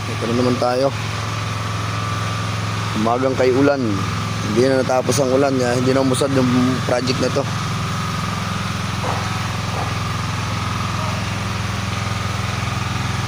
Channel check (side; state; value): both; identical; correlation 1.00